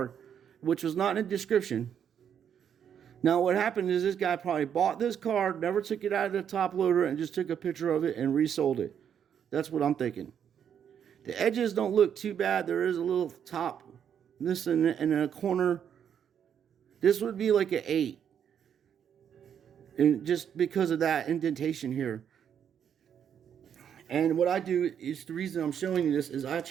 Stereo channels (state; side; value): quieter; left; 8.5 dB